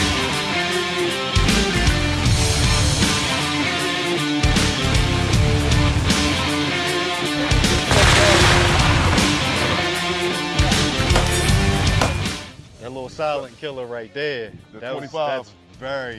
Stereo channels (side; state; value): both; identical; correlation 1.00